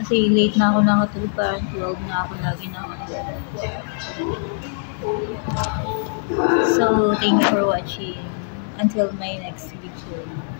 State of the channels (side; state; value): right; silent; digital silence